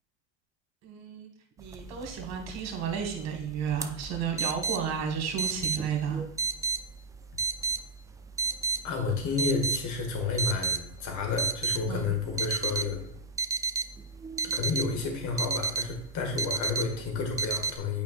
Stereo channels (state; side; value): normal; both; correlation -0.03